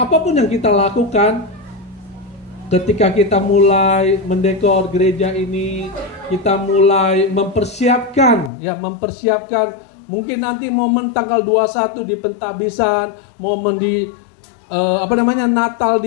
apapun yang kita lakukan, ketika kita mulai mendekor gereja ini, kita mulai mempersiapkan mungkin nanti momen tanggal 21 di pentabisan, momen di Natal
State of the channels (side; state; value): right; drops out; at 8.5 s